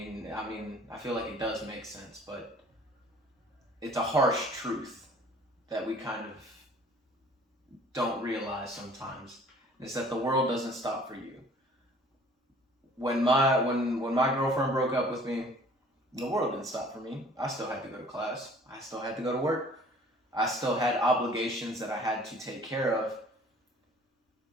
feel like it does make sense, but it's a harsh truth that we kind of don't realize sometimes, is that the world doesn't stop for you. When my girlfriend broke up with me, the world didn't stop for me. I still had to go to class. I still had to go to work. I still had obligations that I had to take care of.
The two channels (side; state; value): both; normal; correlation 0.52